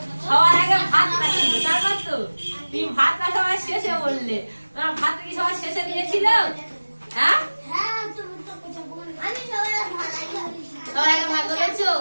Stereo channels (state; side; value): inverted; both; correlation -1.00